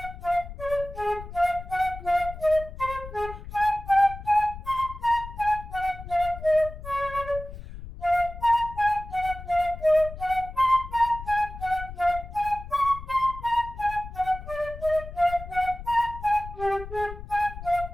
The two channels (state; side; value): noise; left; rumble, 12 dB below the sound